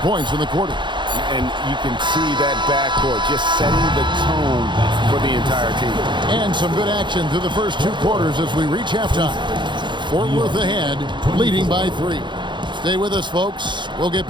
in the quarter. And you can see that backcourt just setting the tone for the entire team. And some good action through the first 2 quarters as we reach halftime. Fort Worth ahead, leading by 3. Stay with us, folks. We'll get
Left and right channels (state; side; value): late; left; 0.23 ms